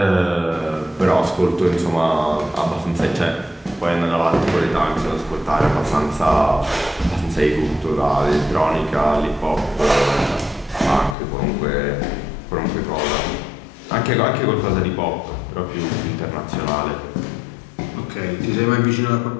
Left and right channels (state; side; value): drops out; right; at 11.2 s